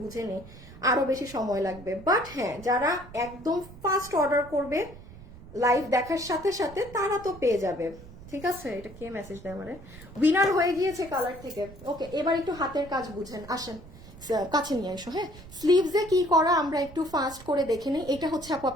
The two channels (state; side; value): noise; right; rumble, 18 dB below the sound